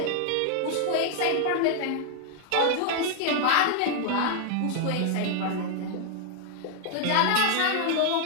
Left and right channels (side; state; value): both; different; correlation 0.00